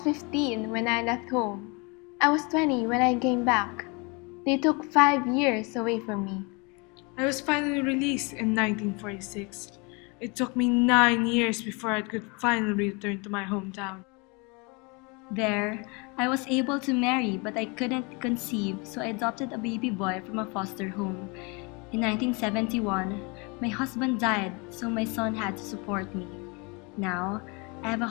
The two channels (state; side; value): quieter; right; 30.2 dB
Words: when I left home. I was 20 when I came back. They took 5 years away from me. I was finally released in 1946. It took me 9 years before I could finally return to my hometown. There, I was able to marry, but I couldn't conceive, so I adopted a baby boy from a foster home. In 1971, my husband died, so my son had to support me. Now, I have a